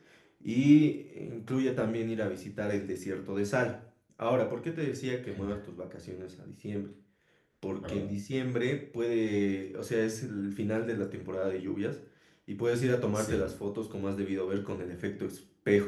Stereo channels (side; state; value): both; identical; correlation 1.00